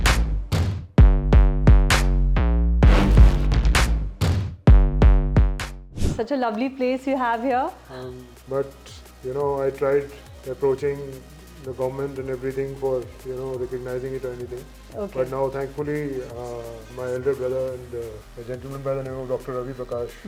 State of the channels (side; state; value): both; identical; correlation 1.00